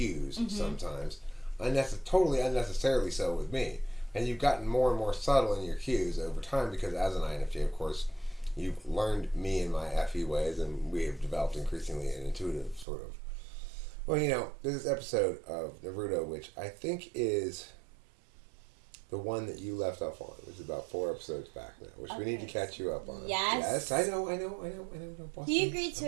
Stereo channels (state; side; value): drops out; left; at 12.9 s